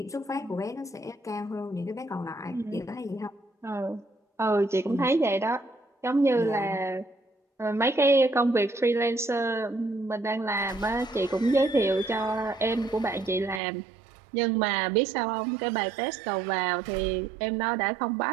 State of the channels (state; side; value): drops out; left; at 13.6 s